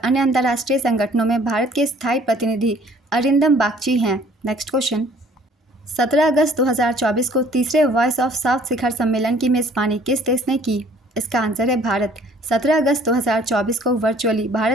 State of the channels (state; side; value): normal; both; correlation 0.56